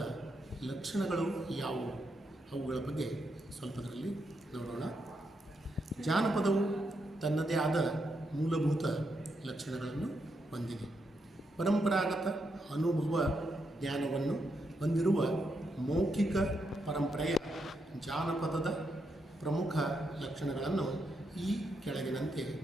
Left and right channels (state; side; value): normal; both; correlation 0.81